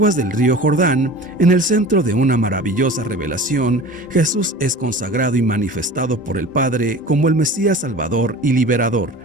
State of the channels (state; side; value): normal; both; correlation 0.38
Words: del río Jordán, en el centro de una maravillosa revelación, Jesús es consagrado y manifestado por el Padre como el Mesías Salvador y Liberador,